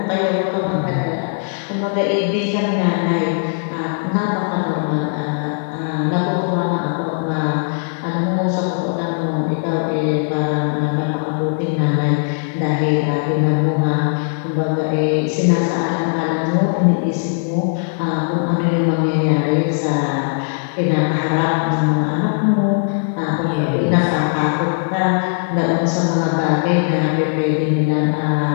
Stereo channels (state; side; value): silent; right; digital silence